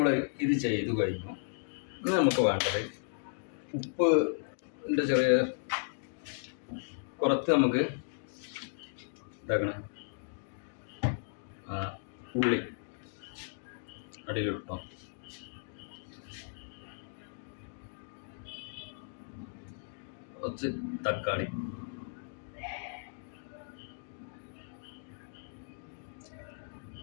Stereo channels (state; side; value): silent; right; digital silence